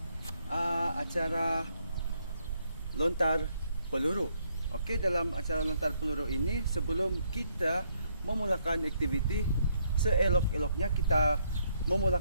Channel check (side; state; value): both; inverted; correlation -0.72